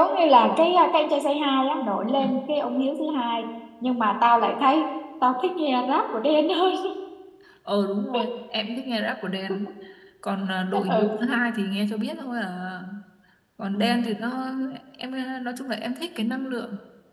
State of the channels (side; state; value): both; identical; correlation 1.00